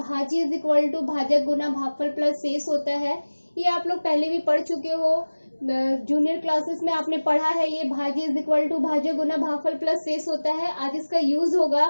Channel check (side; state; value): both; inverted; correlation -1.00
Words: इज इक्वल टू भाजक गुना भागफल प्लस शेष होता है। ये आप लोग पहले भी पढ़ चुके हो, जूनियर क्लासेस में आपने पढ़ा है। ये भाज्य इज इक्वल टू भाजक गुना भागफल प्लस शेष होता है। आज इसका यूज